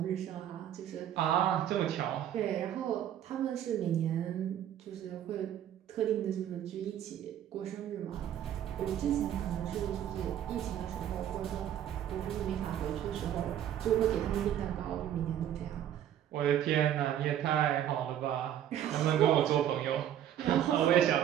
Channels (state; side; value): quieter; left; 10.7 dB